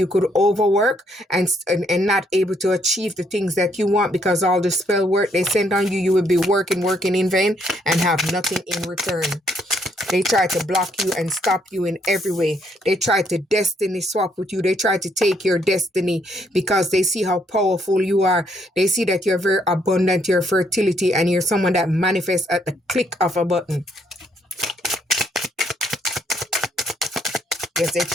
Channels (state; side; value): normal; both; correlation 0.71